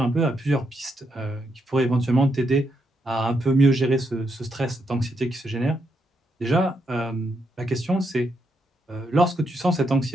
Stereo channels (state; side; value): normal; both; correlation 0.79